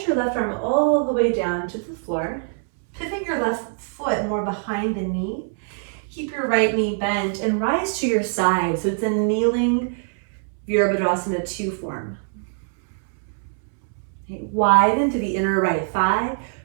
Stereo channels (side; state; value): left; silent; 63 dB below the other